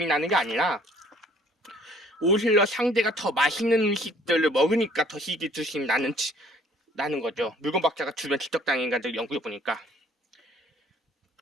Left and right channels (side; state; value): both; normal; correlation 0.57